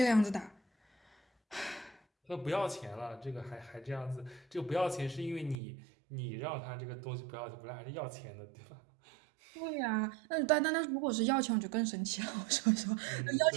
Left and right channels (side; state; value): left; drops out; at 5.6 s